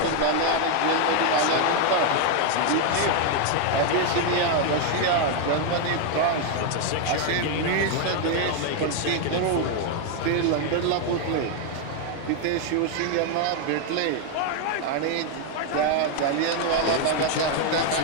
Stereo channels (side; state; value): both; different; correlation 0.00